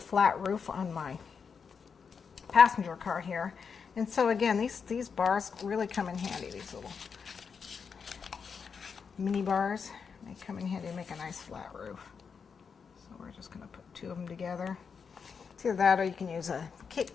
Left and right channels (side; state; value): right; quieter; 6.0 dB